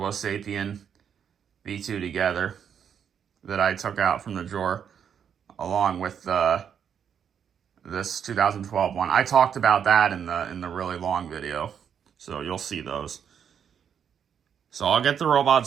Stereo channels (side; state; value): left; quieter; 8.0 dB